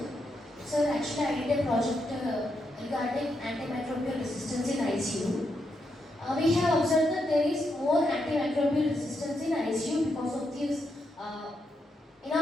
Sir, actually I did a project regarding antimicrobial resistance in ICU. We have observed that there is more antimicrobial resistance in ICU because of this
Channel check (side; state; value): both; normal; correlation 0.82